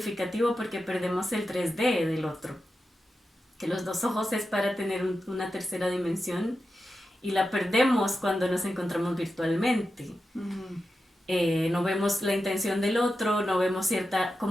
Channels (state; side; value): normal; both; correlation 0.90